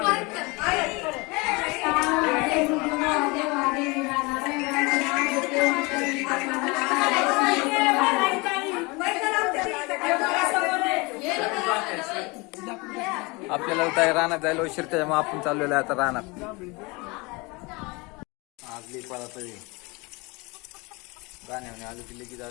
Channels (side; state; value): right; quieter; 26.3 dB